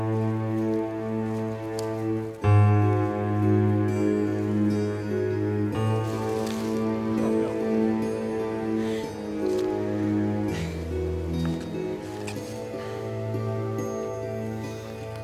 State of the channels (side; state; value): both; identical; correlation 1.00